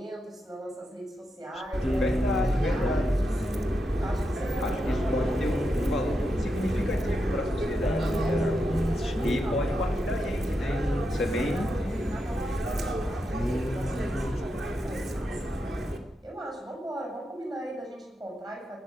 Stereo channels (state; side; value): normal; both; correlation 0.85